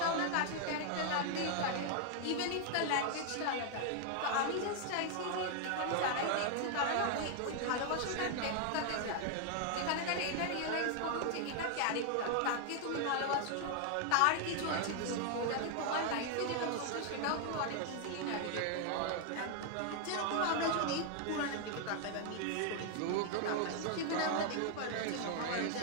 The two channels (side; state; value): both; different; correlation 0.00